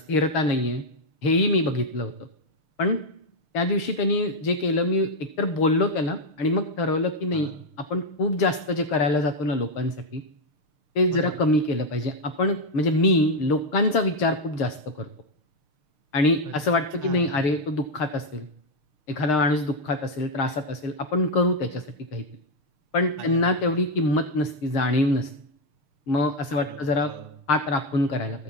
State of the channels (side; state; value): right; late; 6.6 ms